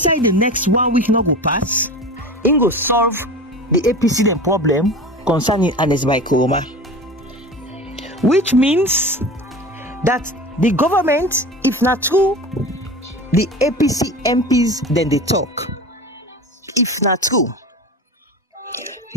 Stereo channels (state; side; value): normal; both; correlation 0.33